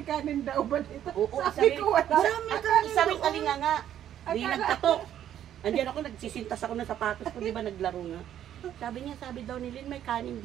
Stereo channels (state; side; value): quieter; left; 10.8 dB